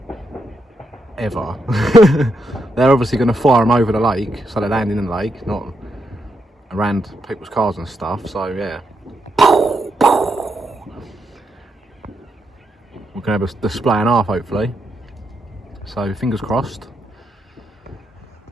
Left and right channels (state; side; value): normal; both; correlation 0.81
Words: ever. They're obviously going to fire them over the lake, so they land in the lake, not around people's cars and stuff. So yeah, we're going to have a display and a half hopefully. So fingers crossed.